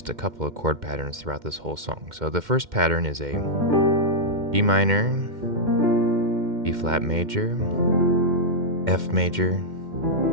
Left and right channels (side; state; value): left; late; 2.1 ms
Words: a couple of chord patterns throughout this whole song. So the first pattern is a G minor, B flat major, F major,